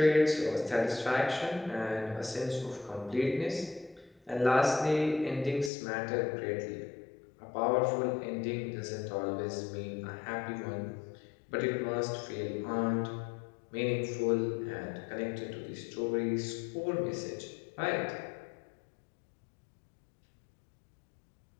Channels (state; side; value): drops out; right; at 5.7 s